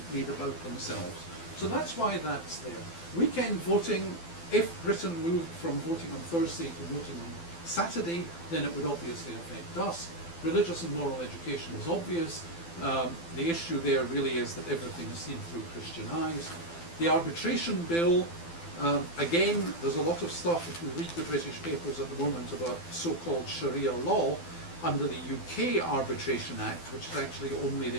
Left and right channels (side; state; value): right; late; 12 ms